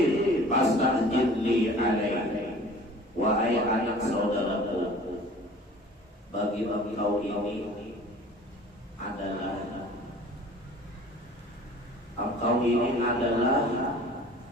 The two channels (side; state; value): both; normal; correlation 0.46